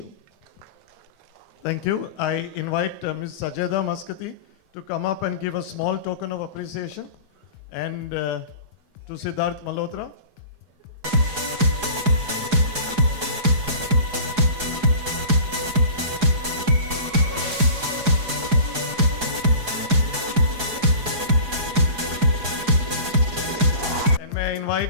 Thank you. I invite Ms. Sajeda Maskati to come up and give a small token of appreciation, and to Siddharth Malhotra. And may I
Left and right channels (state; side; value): late; left; 4.8 ms